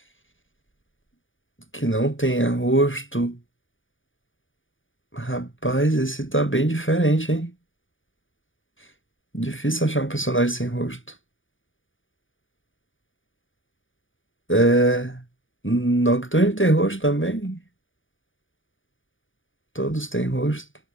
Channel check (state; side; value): late; right; 0.57 ms